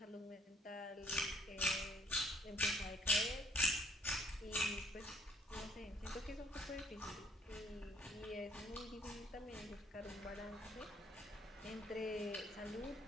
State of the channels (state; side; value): normal; both; correlation 0.62